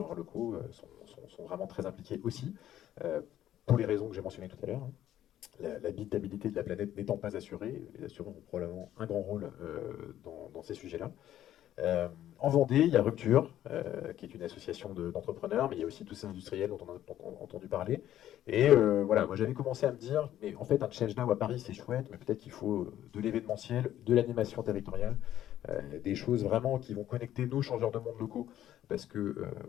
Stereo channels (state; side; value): quieter; right; 12.2 dB